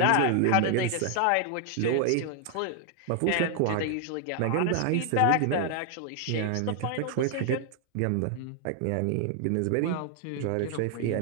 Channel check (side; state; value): both; different; correlation 0.00